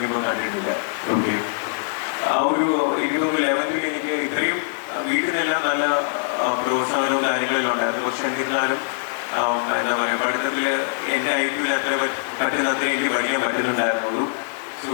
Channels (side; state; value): right; silent; 64 dB below the other